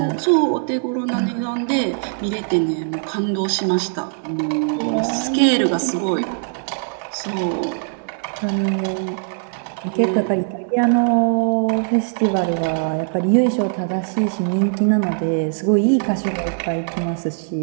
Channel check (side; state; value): left; silent; digital silence